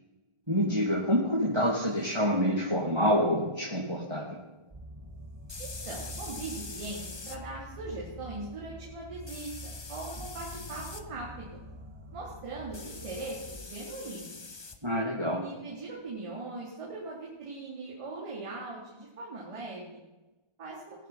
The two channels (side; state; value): left; late; 1.2 ms